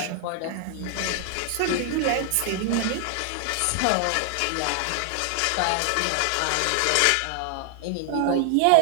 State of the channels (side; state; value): both; different; correlation 0.00